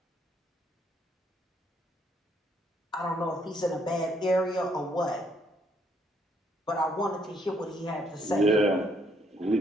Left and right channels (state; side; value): normal; both; correlation 0.70